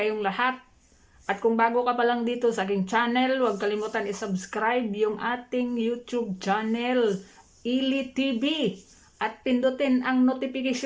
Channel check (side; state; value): both; identical; correlation 1.00